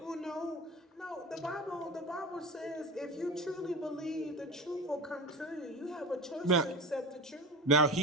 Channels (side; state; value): both; normal; correlation 0.30